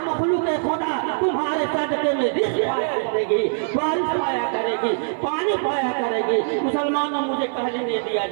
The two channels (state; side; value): silent; left; digital silence